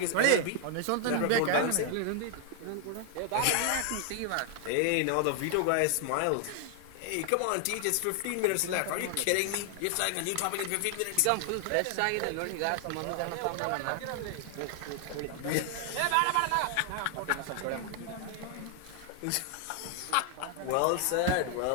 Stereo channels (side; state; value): both; different; correlation 0.00